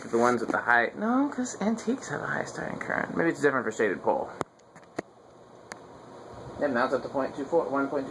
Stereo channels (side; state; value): both; identical; correlation 1.00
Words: that the ones with the high... No, because antiques have a high starting current. Maybe it's different for shaded pole. Yep, now it's up to